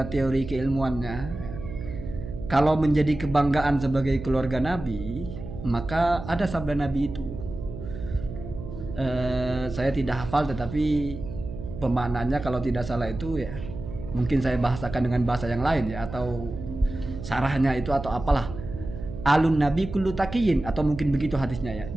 teori keilmuannya, kalau menjadi kebanggaan sebagai keluarga Nabi, maka ada sabda Nabi itu. Saya tidak hafal, tetapi pemaknaannya kalau tidak salah itu ya, mungkin saya bahasakan dengan bahasa yang lain ya, atau sarahnya itu atau apalah. Alun Nabi kullu taqiyin, atau mungkin begitu hadisnya ya.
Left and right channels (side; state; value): right; noise; hum, 10 dB below the sound